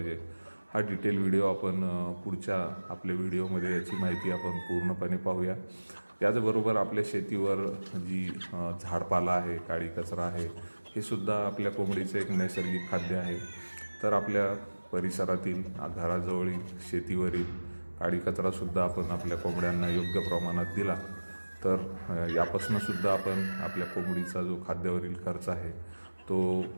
हा डिटेल व्हिडिओ आपण पुढच्या आपल्या व्हिडिओमध्ये याची माहिती आपण पूर्णपणे पाहूया. त्याचबरोबर आपल्या शेतीवर जी झाडपाला आहे, काळी कचरा आहे, हे सुद्धा आपल्या कोंबडीचं एक नैसर्गिक खाद्य आहे. तर आपल्या परिसरातील घराजवळील शेतीवरील काळी कचरासुद्धा आपण आपल्या कोंबड्यांना योग्य प्रमाणात दिला तर यापासून सुद्धा आपण आपल्या कोंबडीचा जो खाद्यावरील खर्च आहे तो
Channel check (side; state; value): both; inverted; correlation -1.00